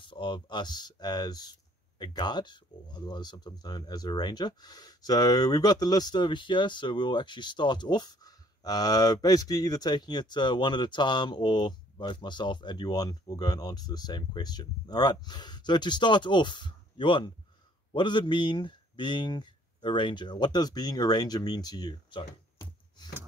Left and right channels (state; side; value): normal; both; correlation 0.61